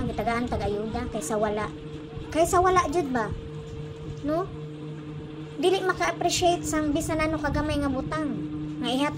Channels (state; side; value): identical; both; correlation 1.00